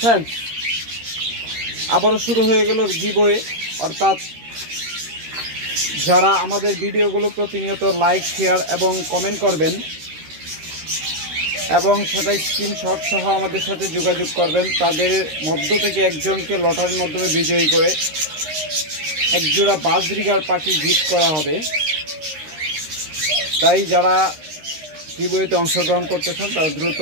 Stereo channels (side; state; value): left; late; 13 ms